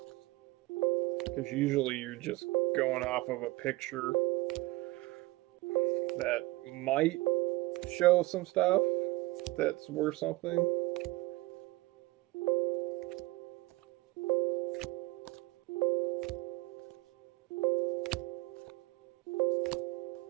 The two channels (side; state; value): left; quieter; 20.6 dB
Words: because usually you're just going off of a picture that might show some stuff that's worth something.